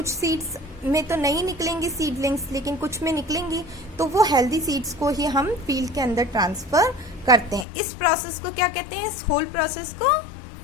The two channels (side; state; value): right; drops out; at 7.7 s